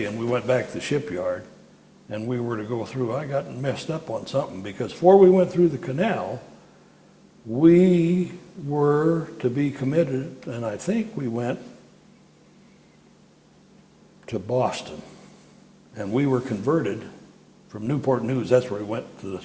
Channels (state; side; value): identical; both; correlation 1.00